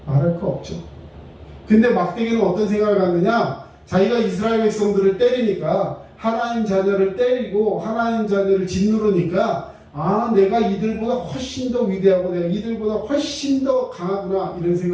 말할 거 없죠. 근데 막대기는 어떤 생각을 갖느냐? 자기가 이스라엘 백성들을 때리니까, 하나님 자녀를 때리고 하나님 자녀를 짓누르니까, 아, 내가 이들보다 훨씬 더 위대하고 내가 이들보다 훨씬 더 강하구나, 이런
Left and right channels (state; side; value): identical; both; correlation 1.00